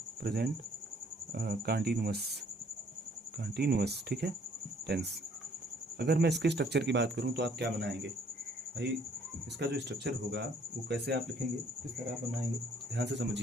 प्रेजेंट कंटिन्यूअस, ठीक है, टेंस। अगर मैं इसके स्ट्रक्चर की बात करूँ तो आप क्या बनाएंगे भाई, इसका जो स्ट्रक्चर होगा वो कैसे आप लिखेंगे, किस तरह आप बनाएंगे, ध्यान से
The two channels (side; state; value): both; normal; correlation 0.62